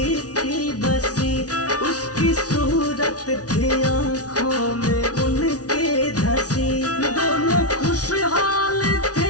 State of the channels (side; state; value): right; late; 0.68 ms